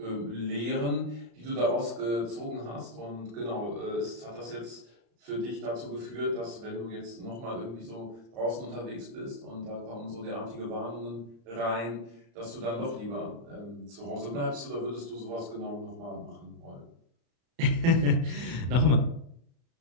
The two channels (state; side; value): late; left; 35 ms